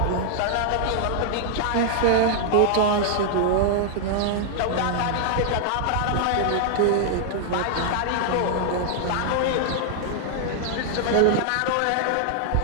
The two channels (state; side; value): different; both; correlation -0.01